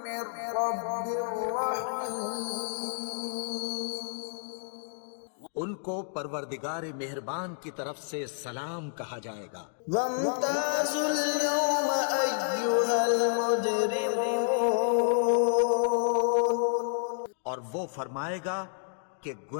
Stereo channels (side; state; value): right; silent; digital silence